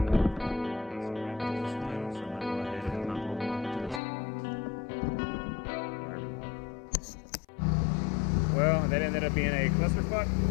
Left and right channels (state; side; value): drops out; right; at 4.0 s